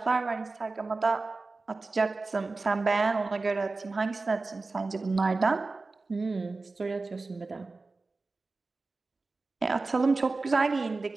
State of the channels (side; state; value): left; quieter; 3.6 dB